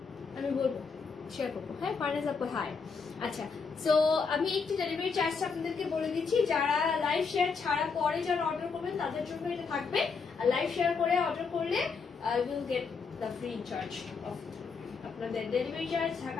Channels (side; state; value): right; quieter; 5.2 dB